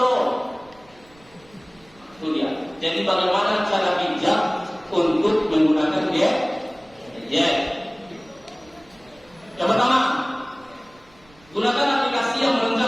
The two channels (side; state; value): right; noise; rumble, 28 dB below the sound